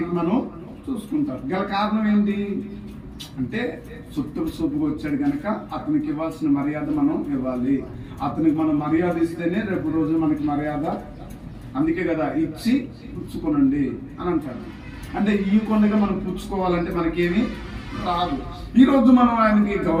మనం చూసుకుంటాం. గల కారణం ఏంటి అంటే చుట్టపు సూపుకు వచ్చాడు కనుక అతనికి ఇవ్వాల్సిన మర్యాద మనం ఇవ్వాలి. అతనికి మనం మర్యాద ఇస్తేనే రేపు రోజు మనకి మర్యాద. అందుకే కదా ఇచ్చి పుచ్చుకోనండి అని అంటారు. అంటే ఈ కొండగా మనం పుచ్చుకోవాలంటే మనకేమి రాదు. ఈ రోజు మనం ఆయనకి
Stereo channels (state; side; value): identical; both; correlation 1.00